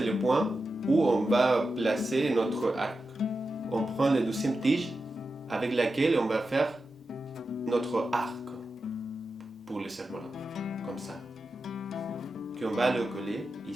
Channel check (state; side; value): normal; both; correlation 0.91